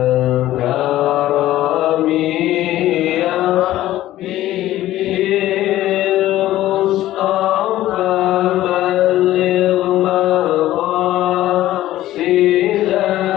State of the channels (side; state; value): right; quieter; 14.6 dB